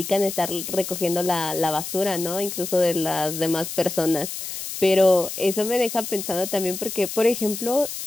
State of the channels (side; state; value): left; noise; hiss, 7 dB below the sound